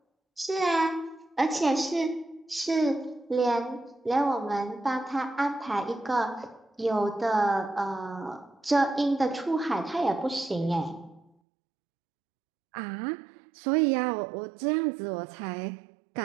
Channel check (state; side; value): drops out; left; at 11.3 s